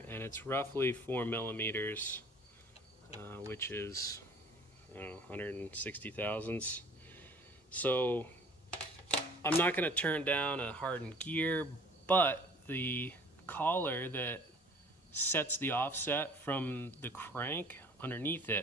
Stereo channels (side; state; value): both; normal; correlation 0.50